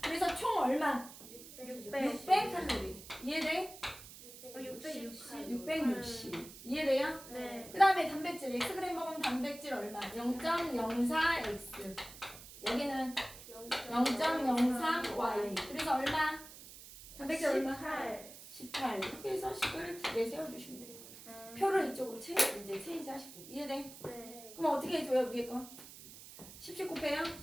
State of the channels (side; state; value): right; noise; hiss, 16 dB below the sound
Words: 그래서 총 얼마? 600 칼로리. 이해돼? 660. 660. 이해돼요? 네. 그 다음에 단백질. Xg 먹으면 단백질 얼마? 0.04X. 여기는 0.03Y. 그래서 얼마? 단백질 얼마? 18. 18. 이렇게 해서 식을 2개 세워주시면 돼요. 표를 이쪽으로 체인지 하시고. 이해돼? 네. 그럼 어떻게 해줘요? 위에 거? 10 곱해요?